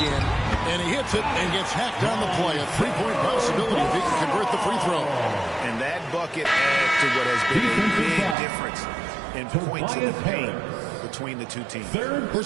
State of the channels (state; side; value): drops out; left; at 8.3 s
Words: And he hits it and gets hacked on the play. A 3-point possibility if he can convert the free throw. And that bucket adds to what has been a big difference in points in the paint between the two teams.